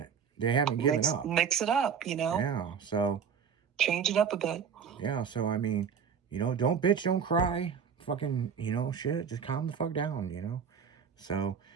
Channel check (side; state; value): left; quieter; 6.9 dB